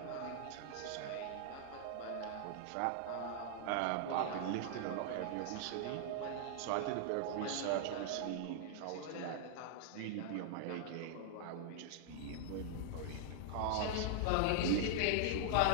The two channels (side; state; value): both; different; correlation -0.01